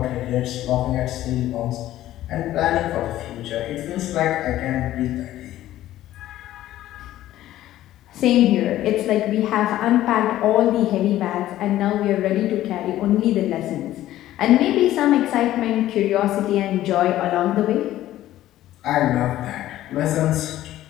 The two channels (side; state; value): right; quieter; 14.0 dB